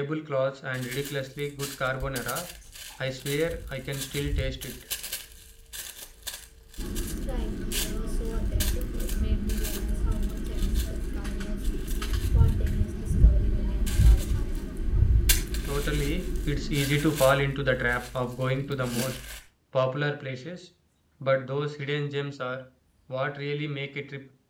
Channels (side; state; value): both; identical; correlation 1.00